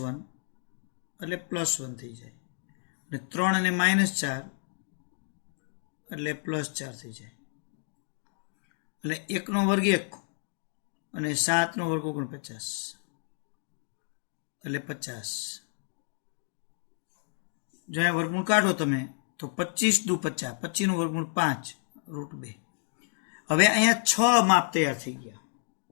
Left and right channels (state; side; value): silent; right; digital silence